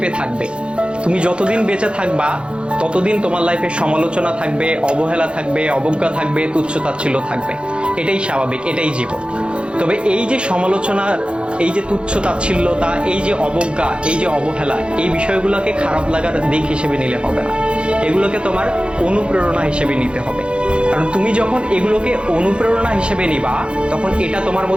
থাকবে। তুমি যতদিন বেঁচে থাকবা ততদিন তোমার লাইফে সমালোচনা থাকবে, অবহেলা থাকবে, অবজ্ঞা থাকবে, তুচ্ছ-তাচ্ছিল্য থাকবে। এটাই স্বাভাবিক, এটাই জীবন। তবে এই যে সমালোচনা, এই যে তুচ্ছ-তাচ্ছিল্যতা, এই যে অবজ্ঞা, এই যে অবহেলা, এই বিষয়গুলোকে খারাপ লাগার দিক হিসেবে নিলে হবে না। এগুলোকে তোমার অনুপ্রেরণা হিসেবে নিতে হবে। কারণ তুমি যখন এগুলোকে অনুপ্রেরণা হিসেবে নিবা, তখন এটা তোমার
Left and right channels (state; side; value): late; left; 0.056 ms